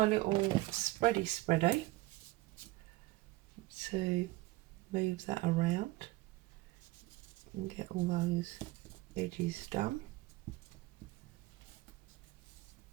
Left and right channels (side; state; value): left; quieter; 19.5 dB